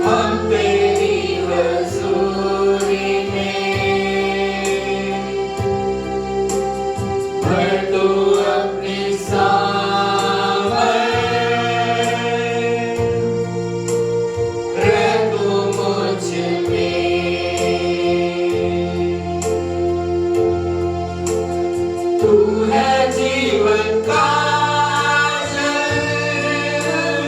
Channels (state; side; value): identical; both; correlation 1.00